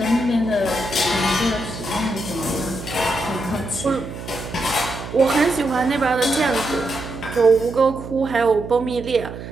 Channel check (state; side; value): noise; right; hum, 10 dB below the sound